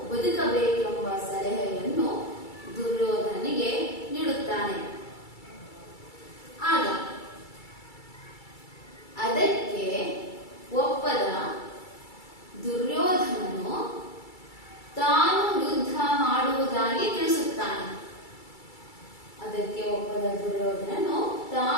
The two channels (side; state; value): right; late; 2.3 ms